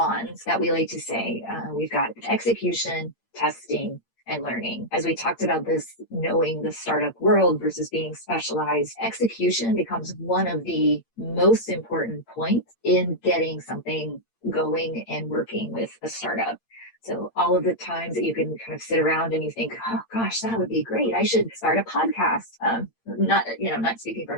that we like to say, we've got execution, testing, and learning. As we talked about this, knowing the startup world versus being specialized, execution becomes one of the most important points in getting something going and working with a startup. So all of the times that you can kind of sit around and you think, oh gosh, that would be great. I should start a podcast. Not speaking from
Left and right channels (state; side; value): late; right; 8.7 ms